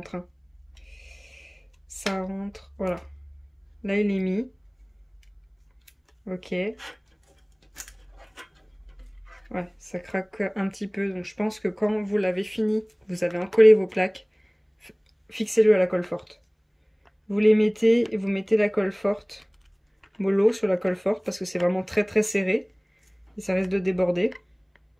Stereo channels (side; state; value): both; identical; correlation 1.00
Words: Hein. Ça rentre, voilà. Là, il est mis. Ok. Ouais, ça craque un petit peu. Donc, je pense que quand vous l'avez fini, vous avez encollé vos plaques, fixez-le à la colle forte. Vous les mettez et vous mettez la colle forte, mollo sur la colle forte, parce que c'est vraiment très très serré. Et ça risque de déborder.